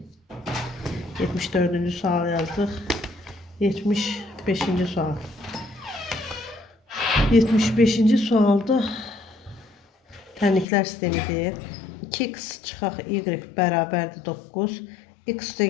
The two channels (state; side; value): drops out; right; at 10.7 s